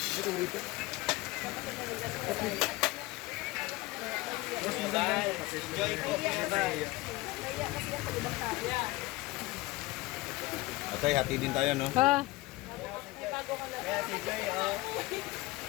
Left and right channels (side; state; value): right; quieter; 20.8 dB